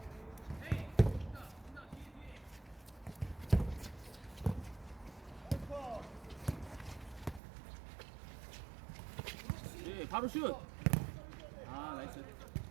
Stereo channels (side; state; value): left; drops out; at 7.4 s